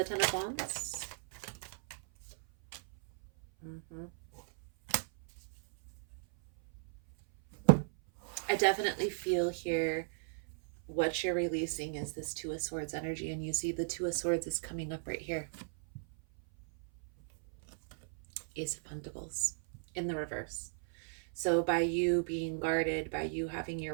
Ten of Wands. Mm-hmm. I definitely feel here what you're releasing is this Two of Swords energy, and you see the Two of Swords is coming up right here. Ace of Pentacles in the reverse. So by you being guarded, by you having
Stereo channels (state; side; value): silent; left; 53 dB below the other